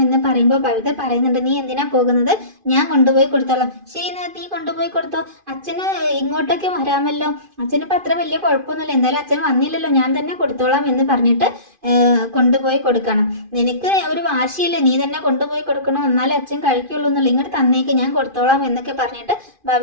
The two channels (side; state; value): left; late; 2.5 ms